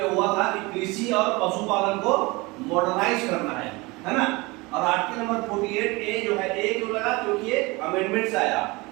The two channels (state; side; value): quieter; left; 24.1 dB